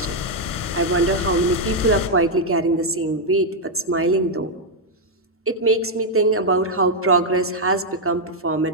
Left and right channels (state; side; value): normal; both; correlation -0.01